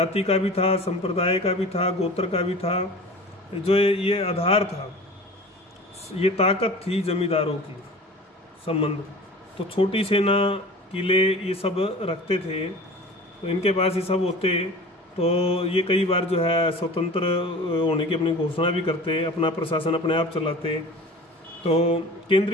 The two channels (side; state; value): both; normal; correlation 0.39